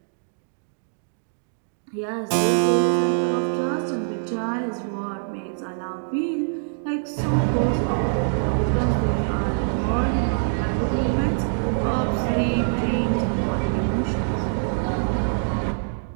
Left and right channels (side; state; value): left; silent; digital silence